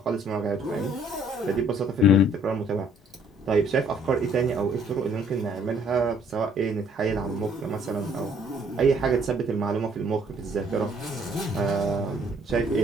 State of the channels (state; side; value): normal; both; correlation 0.61